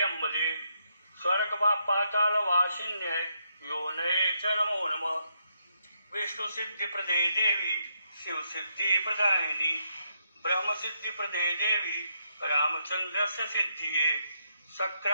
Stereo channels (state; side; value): inverted; both; correlation -0.78